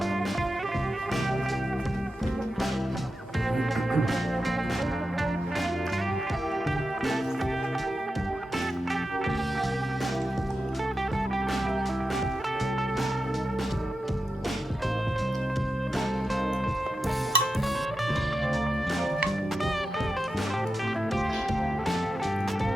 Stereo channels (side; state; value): both; normal; correlation 0.90